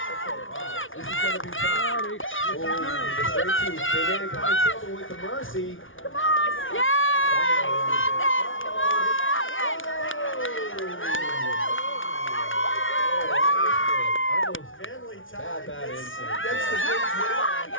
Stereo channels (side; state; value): right; late; 0.57 ms